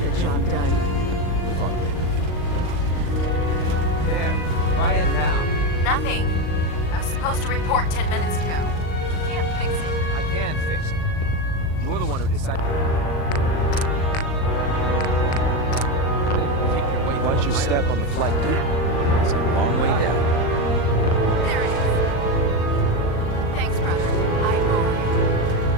the job debriefing to done. attend. We'll talk later. There. Try it now. Nothing. I was supposed to report 10 minutes ago. You can't fix it. I can fix it. You're the one Watch your step on the flight deck. It's a long way down. There it is. Thanks, brother. I owe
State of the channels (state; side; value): late; right; 38 ms